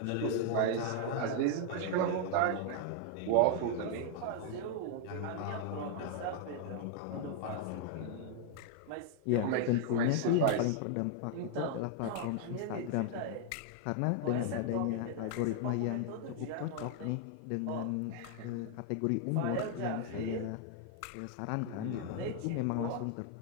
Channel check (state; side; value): different; both; correlation 0.00